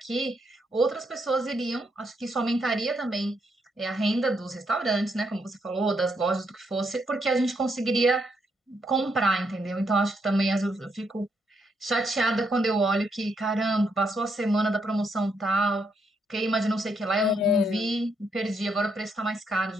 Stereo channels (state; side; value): normal; both; correlation 0.77